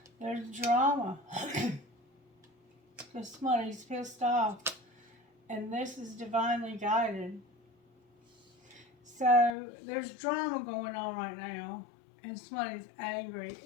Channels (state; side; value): drops out; right; at 9.5 s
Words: There's drama. Because somebody's pissed off. And this is divinely guided. So there's drama going on right now. And somebody's angry